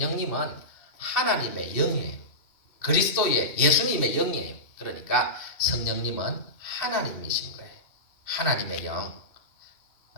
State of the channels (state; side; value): late; right; 2.5 ms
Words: 하나님의 영이에요. 그리스도의 예수님의 영이에요. 그러니까 성령님은 하나님이신 거예요. 하나님의 영,